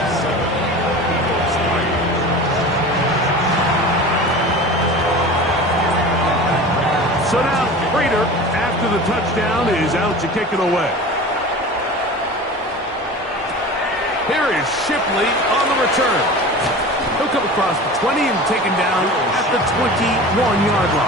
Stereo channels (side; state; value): both; normal; correlation 0.35